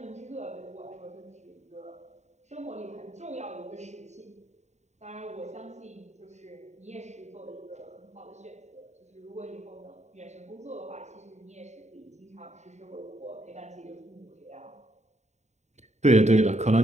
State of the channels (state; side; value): late; left; 0.33 ms